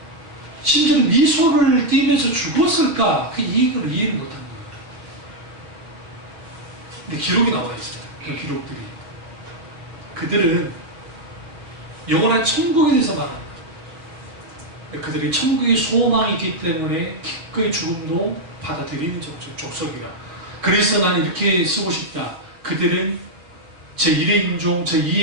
심지어 미소를 띠면서 죽었을까? 그 이익을 이해를 못한 거예요. 근데 기록이 나와 있어요. 그 기록들이. 그들은 영원한 천국에 대해서 말합니다. 그들이 천국의 소망이 있기 때문에 기꺼이 죽음도 받아들이는 족속이라. 그래서 나는 이렇게 쓰고 싶다. 그들은 제1의 인종,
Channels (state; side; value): late; left; 6.3 ms